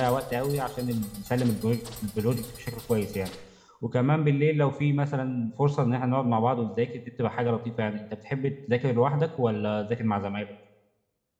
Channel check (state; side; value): identical; both; correlation 1.00